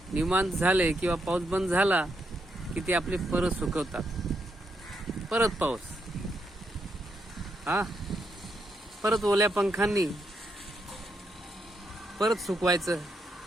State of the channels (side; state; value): both; normal; correlation 0.79